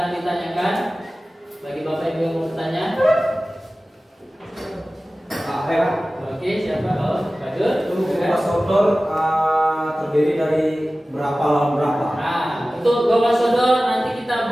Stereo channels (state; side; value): normal; both; correlation 0.96